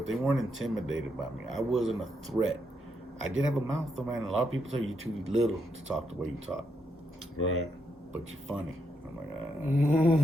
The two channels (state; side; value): normal; both; correlation 0.79